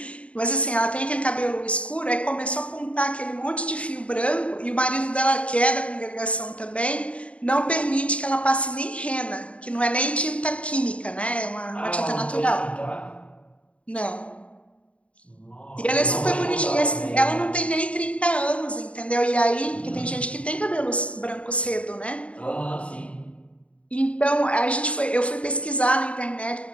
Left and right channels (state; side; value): late; right; 0.062 ms